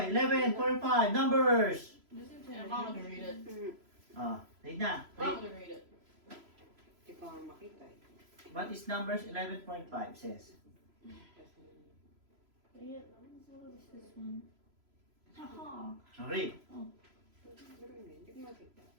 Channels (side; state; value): left; late; 3.0 ms